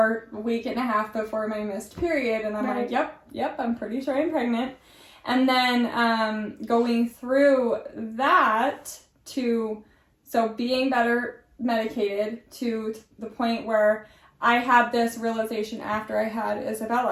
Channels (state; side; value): identical; both; correlation 1.00